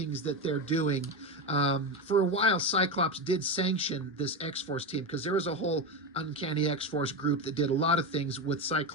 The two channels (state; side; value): normal; both; correlation 0.16